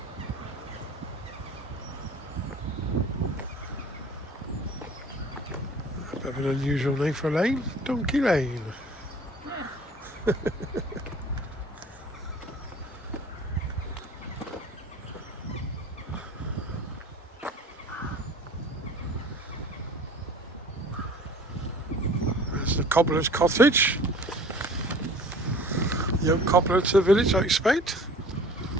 A bit of an unusual name for a lane, Donkey Lane. Yeah. There's the cobbler's cottage. Young cobbler to the village, I expect.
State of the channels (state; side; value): normal; both; correlation 0.46